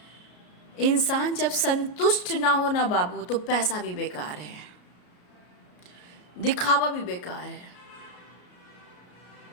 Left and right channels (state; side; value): late; right; 33 ms